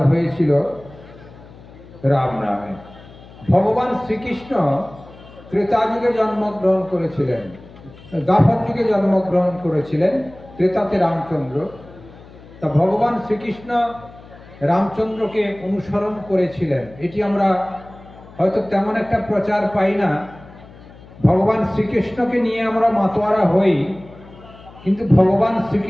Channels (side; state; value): left; noise; hum, 21 dB below the sound